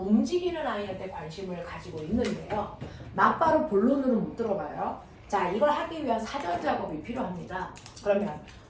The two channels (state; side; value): identical; both; correlation 1.00